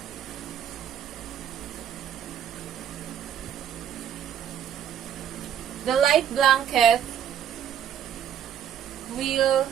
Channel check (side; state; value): left; quieter; 9.5 dB